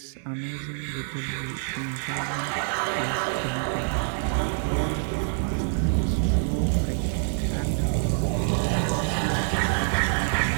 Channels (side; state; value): left; silent; digital silence